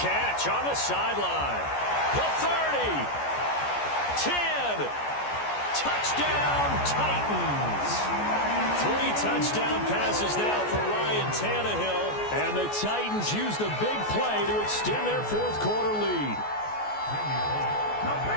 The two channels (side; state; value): right; late; 14 ms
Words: on the sideline. The 30, 10, touchdown Titans. 3 touchdown passes now for Ryan Tannehill, and the Titans use the big play to extend their 4th quarter lead.